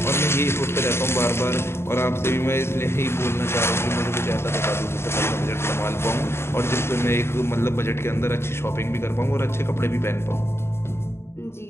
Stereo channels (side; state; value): right; late; 0.12 ms